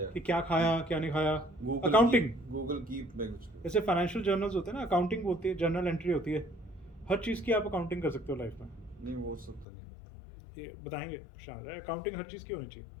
कि क्या खाया क्या नहीं खाया. Google अकाउंटिंग, Google Keep में कुछ. जैसे फाइनेंशियल जर्नल्स होते हैं ना, अकाउंटिंग होती है, जर्नल एंट्री होती है. हर चीज़ की आप अकाउंटिंग कर सकते हो लाइफ में. नहीं वो सब तो नहीं करता. ये बताएंगे शायद. अकाउंटिंग हर चीज़ की होनी चाहिए.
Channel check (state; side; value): drops out; right; at 9.7 s